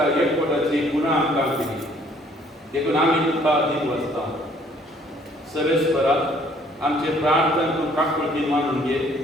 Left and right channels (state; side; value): normal; both; correlation 0.61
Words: एकवटाची पुन्हा आमकां दिली देखून आमी तुका दीन वचता सर्वेस्परा आमचे प्रार्थना तूं काकूळटी मानून घे